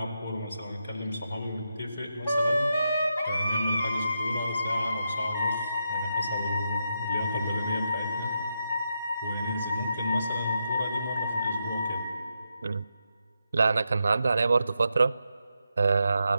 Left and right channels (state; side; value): inverted; both; correlation -0.84